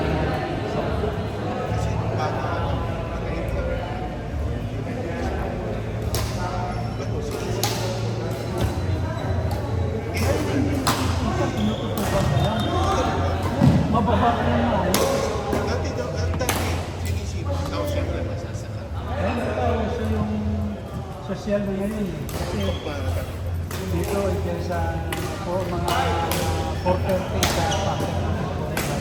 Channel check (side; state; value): both; identical; correlation 1.00